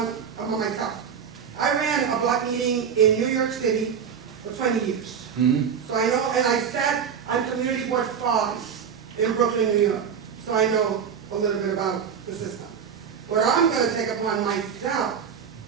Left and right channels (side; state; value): left; quieter; 7.3 dB